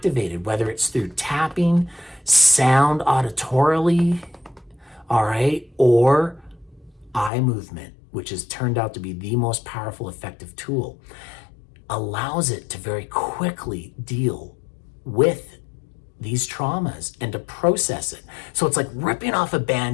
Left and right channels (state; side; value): drops out; right; at 7.3 s